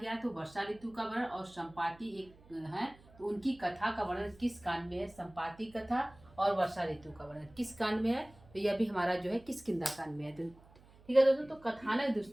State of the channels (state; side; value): noise; right; hum, 25 dB below the sound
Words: तो वर्षा ऋतु का वर्णन, और संपाति एक है तो उनकी कथा का वर्णन किस कांड में है? संपाति कथा और वर्षा ऋतु का वर्णन किस कांड में है? तो यह भी हमारा जो है किष्किंधा कांड में है। ठीक है दोस्तों, तो कथानक